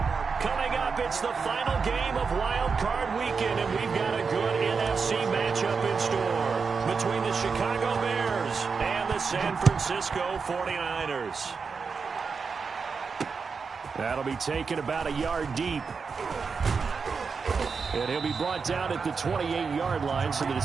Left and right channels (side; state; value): left; quieter; 5.2 dB